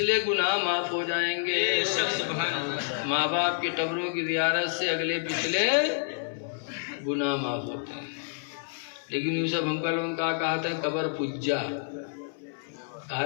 گناہ معاف ہو جائیں گے۔ ماں باپ کی قبروں کی زیارت سے اگلے پچھلے گناہ معاف ہوتے ہیں۔ لیکن یوسف ہم کا لوگوں کا کہا تھا قبر پجا، کہا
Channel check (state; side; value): silent; right; 59 dB below the other